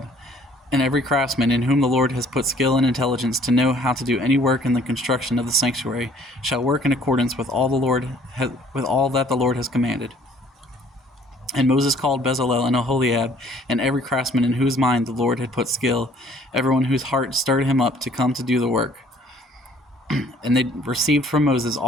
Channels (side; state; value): both; normal; correlation 0.57